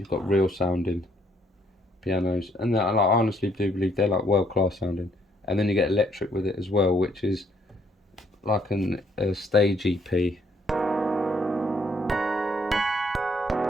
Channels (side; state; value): both; normal; correlation 0.68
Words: got real sounding pianos, and I honestly do believe they're like world class sounding. And then you get electric with it as well, which is like a stage EP.